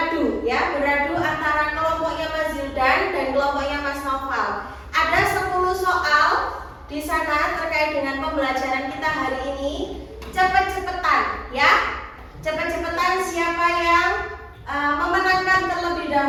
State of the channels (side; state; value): both; identical; correlation 1.00